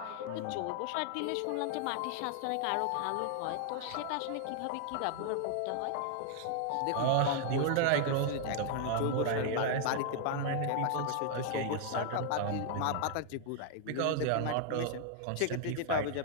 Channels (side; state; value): both; different; correlation 0.00